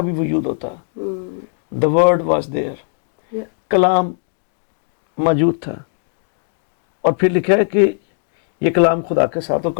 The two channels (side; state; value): right; silent; digital silence